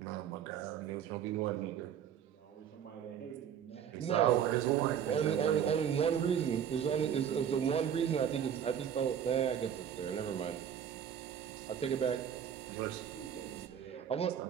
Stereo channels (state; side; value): quieter; left; 8.8 dB